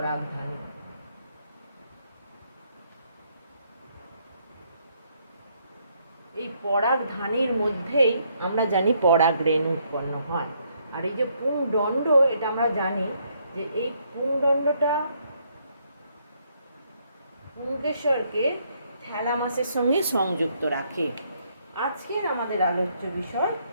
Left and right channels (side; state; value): both; inverted; correlation -0.71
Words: এই পরাগধানীর মধ্যেই আমরা জানি পরাগ রেণু উৎপন্ন হয়। আর এই যে পুংদণ্ড, এটা আমরা জানি যে এই পুংদণ্ডটা পুংকেশরকে থ্যালামাসের সঙ্গে সংযুক্ত রাখে। আজকের আমাদের আলোচ্য বিষয়